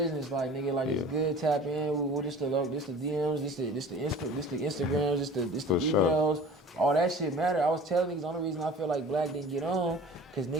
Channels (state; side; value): normal; both; correlation 0.43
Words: like nigga, like it's good. Tap in. With this the DMs, this the Instagrams, this the For emails. sure. All that shit matter. I was telling niggas the only reason I feel like Black didn't get on, cause